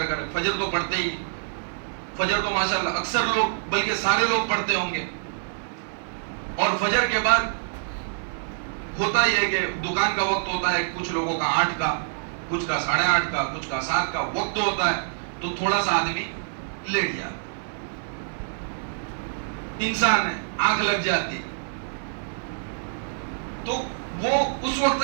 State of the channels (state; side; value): silent; left; digital silence